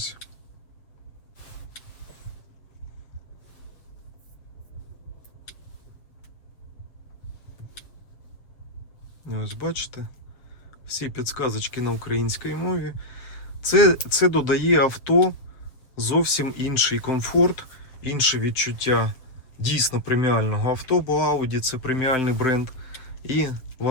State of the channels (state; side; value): late; right; 7.6 ms